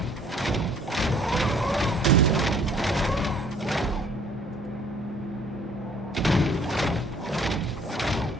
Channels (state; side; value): normal; both; correlation 0.57